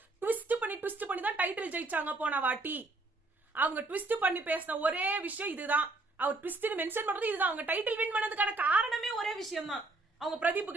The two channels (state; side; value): quieter; left; 3.1 dB